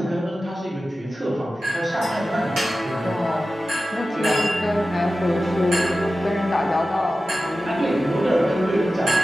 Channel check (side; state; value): both; normal; correlation 0.94